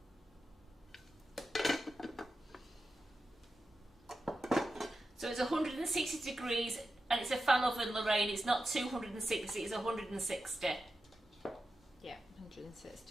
it's 160 degrees and it's a fan oven, Lorraine. It's not 260, it's 160. Yeah,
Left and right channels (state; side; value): normal; both; correlation 0.90